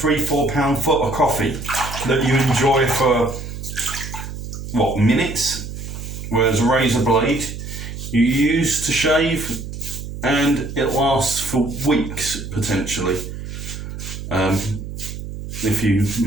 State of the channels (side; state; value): right; noise; hum, 9 dB below the sound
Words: foot of coffee that you enjoy for minutes, whereas a razor blade you use to shave and it lasts for weeks potentially, if you